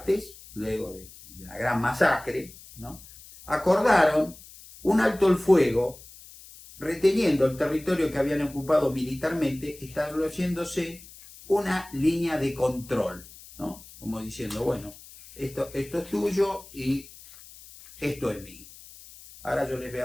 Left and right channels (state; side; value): noise; left; hiss, 19 dB below the sound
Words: luego de la gran masacre, ¿no?, acordaron un alto el fuego, reteniendo el territorio que habían ocupado militarmente, estableciéndose una línea de control, ¿no?, como diciendo, bueno, esto es tuyo y esto es mío. Ahora yo les voy